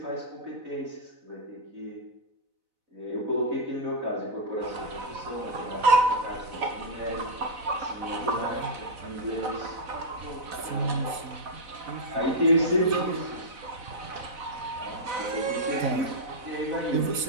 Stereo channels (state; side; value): late; left; 4.0 ms